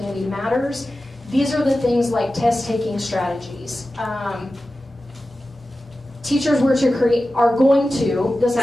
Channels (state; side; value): normal; both; correlation 0.94